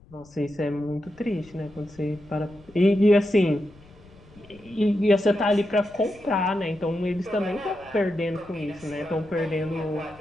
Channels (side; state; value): left; noise; rumble, 25 dB below the sound